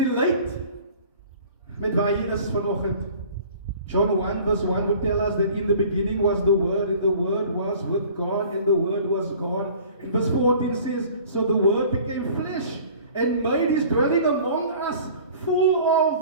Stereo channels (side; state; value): both; inverted; correlation -0.48